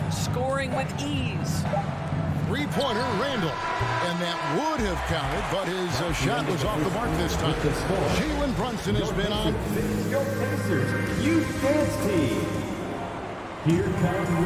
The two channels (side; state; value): both; identical; correlation 1.00